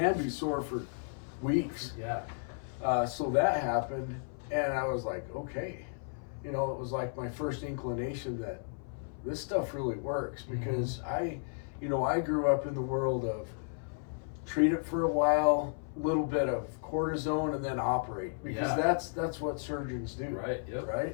be sore for weeks. Yeah. So that happened, and I was like, okay. It was like my first inclination that this stuff really works, because I grew up in the world of treat it for a while, little bit of cortisone, and then operate, because that's what surgeons do. Right. Yep.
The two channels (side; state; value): right; silent; 55 dB below the other